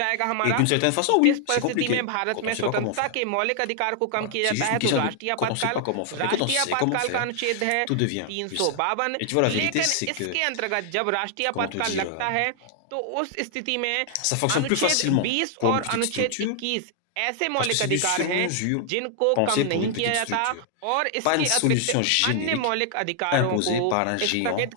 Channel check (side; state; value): both; different; correlation 0.00